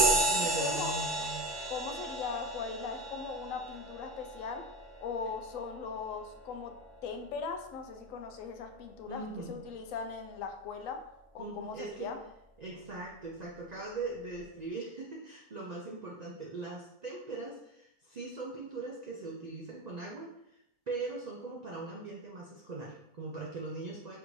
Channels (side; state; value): both; normal; correlation 0.22